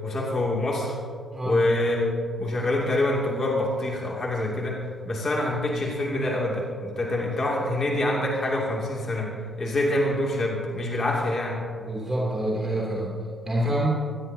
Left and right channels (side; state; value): both; normal; correlation 0.73